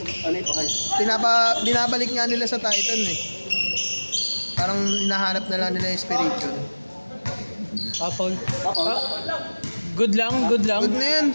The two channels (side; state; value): both; inverted; correlation -1.00